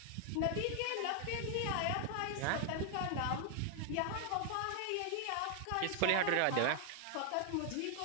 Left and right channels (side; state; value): both; different; correlation 0.00